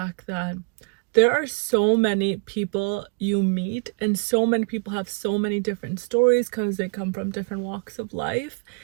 that there are so many people you meet, and so many people have so many different stories because they come from different walks of life.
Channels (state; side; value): quieter; left; 34.5 dB